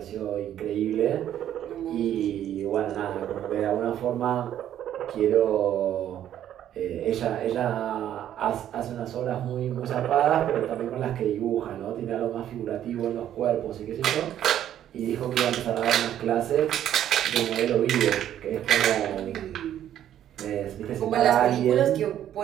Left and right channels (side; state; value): left; quieter; 11.0 dB